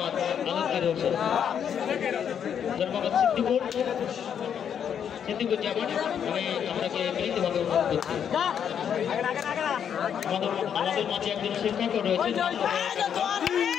আলমগীর হোসেন। জনাব মোহাম্মদ সিদ্দিকুর জামান আমি আপনাকে বিনীতভাবে অনুরোধ করছি। আমাদের মাঝে একজন শিক্ষকও রয়েছেন।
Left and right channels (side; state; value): right; quieter; 8.3 dB